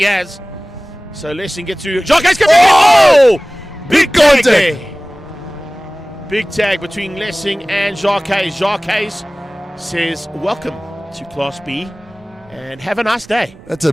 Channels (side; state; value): both; normal; correlation 0.98